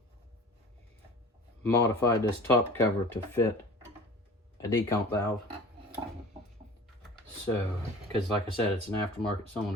modified this top cover to fit a decomp valve. So, because like I said, it's an aftermarket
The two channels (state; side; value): normal; both; correlation 0.41